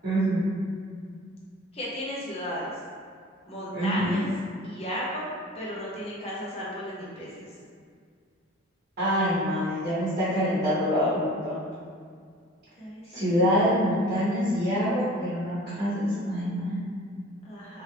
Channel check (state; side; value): normal; both; correlation 0.43